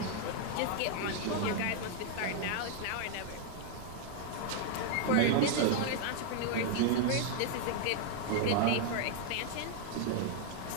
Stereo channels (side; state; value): both; different; correlation 0.00